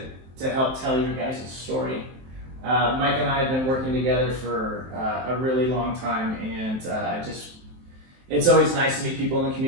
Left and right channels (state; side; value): late; left; 23 ms